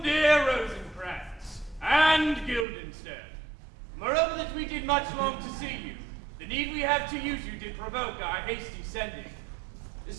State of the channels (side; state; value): left; drops out; at 2.7 s